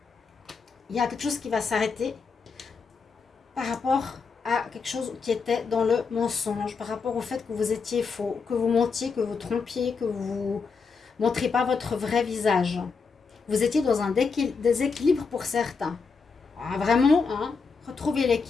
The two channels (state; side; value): quieter; right; 5.1 dB